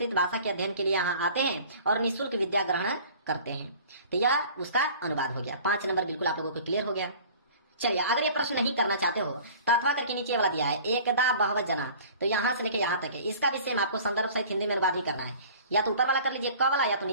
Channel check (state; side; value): inverted; both; correlation -0.46